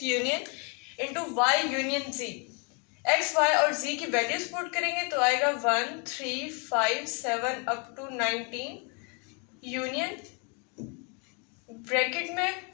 union into y union z। x, y और z की values put करेंगे तो आएगा 1 3 5 7 up to 19 union bracket में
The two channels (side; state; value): right; quieter; 35.0 dB